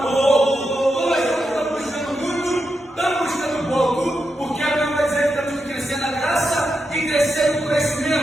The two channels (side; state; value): both; normal; correlation 0.86